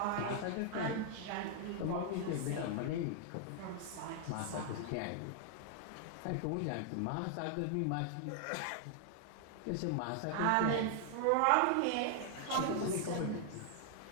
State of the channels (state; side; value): different; both; correlation 0.00